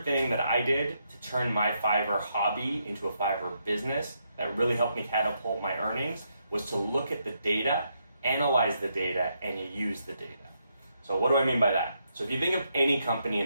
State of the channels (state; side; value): inverted; both; correlation -0.78